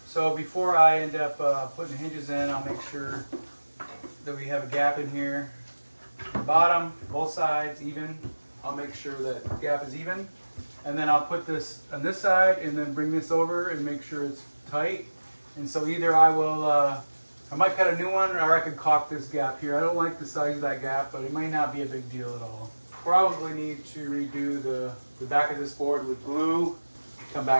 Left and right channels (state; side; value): inverted; both; correlation -1.00